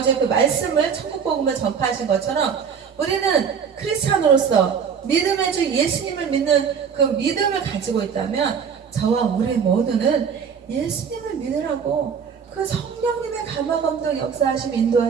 그 말씀을 천국 복음을 전파하신 것처럼 우리는 크리스찬으로서 믿음의 주 예수님을 믿는 그 믿음을 가지고 있다면 저와 우리 모두는 예수님을 믿으라고 그 성령님의 감화 감동 역사하심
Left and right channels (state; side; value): quieter; left; 6.8 dB